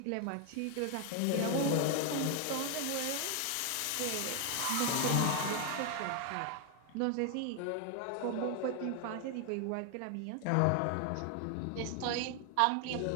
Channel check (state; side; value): different; both; correlation 0.00